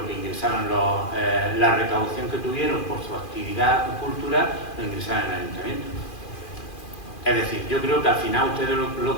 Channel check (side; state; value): right; late; 2.4 ms